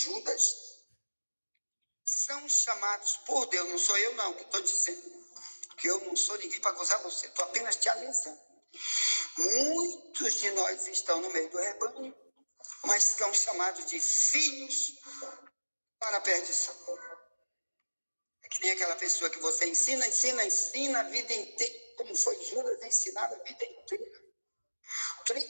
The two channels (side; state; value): both; inverted; correlation -1.00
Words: são chamados por Deus. Não sou eu não que estou dizendo, que eu não sou ninguém para acusar você, estou apenas te avisando. Muitos de nós estão no meio do rebanho, mas são chamados de filhos para a perdição. É que nem aquela pessoa que você ensina a vida inteira, como foi Judas ensinado a vida inteira.